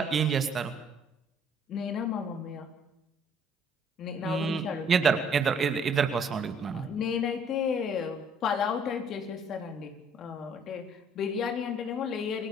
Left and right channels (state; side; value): normal; both; correlation 0.61